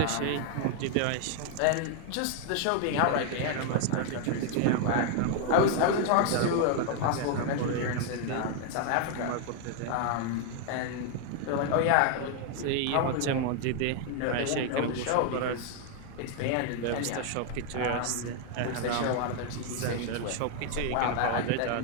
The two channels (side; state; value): both; different; correlation 0.00